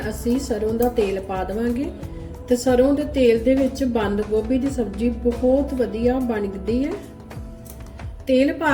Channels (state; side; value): identical; both; correlation 1.00